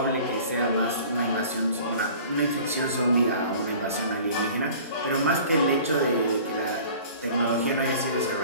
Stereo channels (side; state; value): both; inverted; correlation -0.46